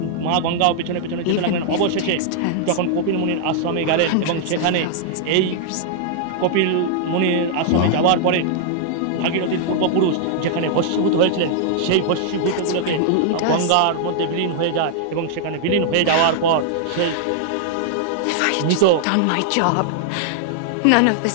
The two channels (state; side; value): different; both; correlation -0.01